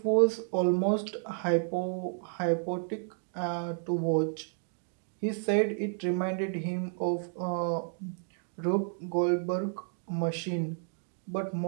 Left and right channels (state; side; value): silent; left; digital silence